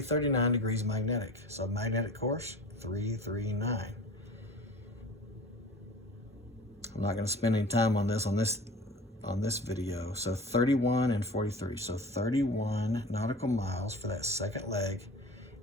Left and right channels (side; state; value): both; normal; correlation 0.39